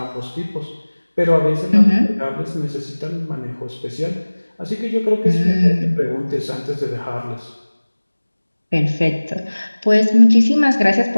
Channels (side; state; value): both; inverted; correlation -1.00